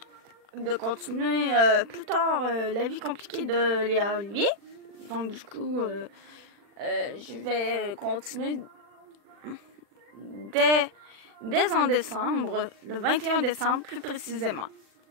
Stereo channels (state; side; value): late; left; 40 ms